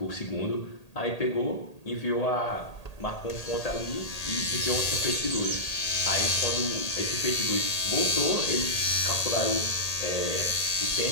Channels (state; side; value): late; right; 1.8 ms